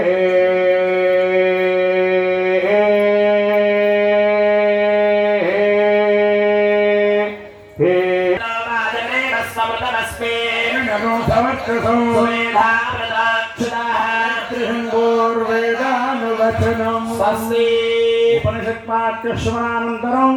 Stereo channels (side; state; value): both; identical; correlation 1.00